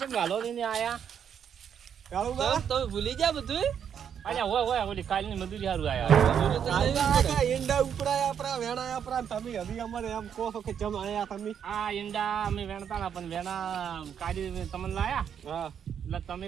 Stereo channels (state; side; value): quieter; left; 8.2 dB